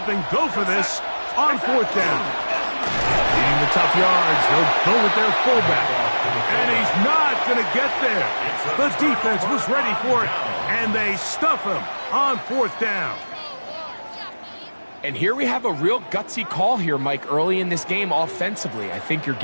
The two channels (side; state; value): both; inverted; correlation -1.00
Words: and go for this on fourth down. Needing the tough yards, they'll go with their fullback. And he's not going to get there. The defense was ready for it, and they stuff him on fourth down. And here we have a real gutsy call here, Mike, early in this game offensively. I think you're